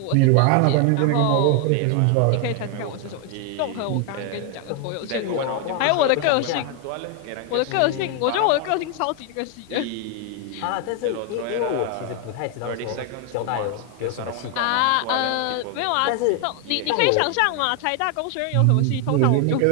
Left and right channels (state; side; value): different; both; correlation 0.00